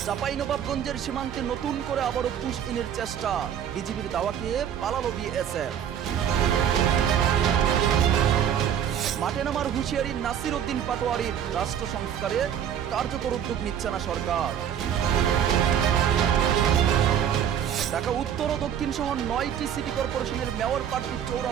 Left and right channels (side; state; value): left; quieter; 9.2 dB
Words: চাঁপাইনবাবগঞ্জের সীমান্তে নতুন করে আবারও পুশ ইনের চেষ্টা, বিজিবির দাওয়া খেয়ে পালালো বিএসএফ। মাঠে নামার হুঁশিয়ারি নাসির উদ্দিন পাটোয়ারির, রাষ্ট্র সংস্কারে কার্যকর উদ্যোগ নিচ্ছে না সরকার। ঢাকা উত্তর ও দক্ষিণ সহ 9টি সিটি কর্পোরেশনের মেয়র প্রার্থী